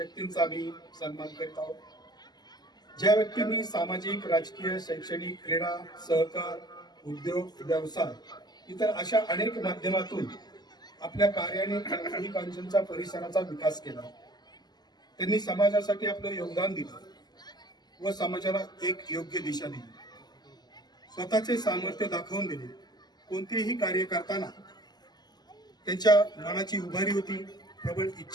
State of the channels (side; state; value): right; late; 0.20 ms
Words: आम्ही सन्मान करत आहोत. ज्या व्यक्तींनी सामाजिक, राजकीय, शैक्षणिक, क्रीडा, सहकार, उद्योग, व्यवसाय इतर अशा अनेक माध्यमातून आपल्या कार्याने उरुळी कांचनच्या परिसराचा विकास केला. त्यांनी समाजासाठी आपलं योगदान दिलं व समाजाला एक योग्य दिशा दिली. स्वतःचे सामर्थ्य दाखवून दिले. कोणतेही कार्य करताना त्यांच्या मनाची उभारी होती, प्रबळ